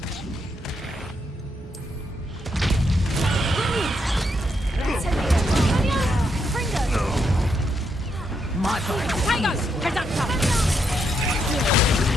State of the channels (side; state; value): both; normal; correlation 0.79